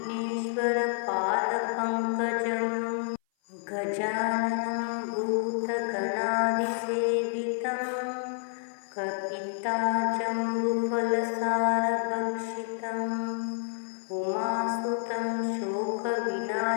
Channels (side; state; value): right; silent; 57 dB below the other